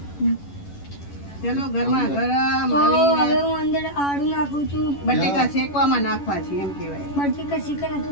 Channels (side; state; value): right; late; 11 ms